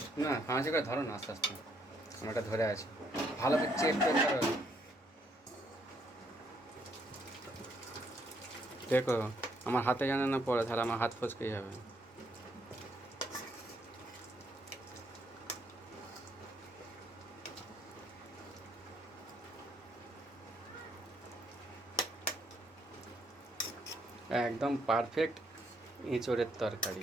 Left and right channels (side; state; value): both; normal; correlation 0.71